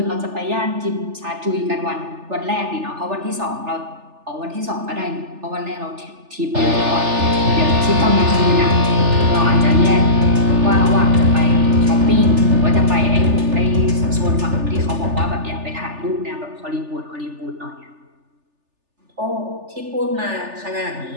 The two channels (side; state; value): left; late; 3.4 ms